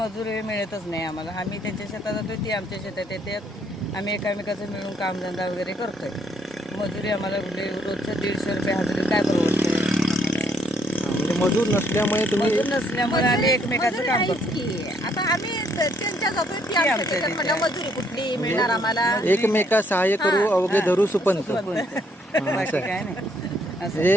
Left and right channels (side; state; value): both; normal; correlation 0.69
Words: मिळतच नाही आम्हाला. आम्ही त्यांच्या शेतात जातो, ती आमच्या शेतात येतात. आम्ही एकामेकाचं मिळून कामधंदा वगैरे करतोय. मजुरी आम्हाला रोजचं 150 रुपये हजेरी काय परवडतं. म्हणजे मजूर नसल्यामुळे तुम्ही मजूर नसल्यामुळे आम्ही एकमेकाचं काम करतो. की आता आम्ही त्यांच्या जातोय ती आमच्या त्याच्यात म्हणलं मजुरी कुठली मिळणार आम्हाला. एकमेका सहाय्य करू अवघे धरू सुपंत. बाकी काय नाही.